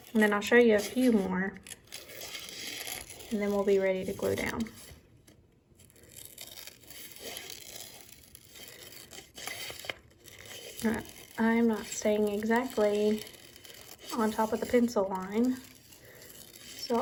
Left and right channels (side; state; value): both; identical; correlation 1.00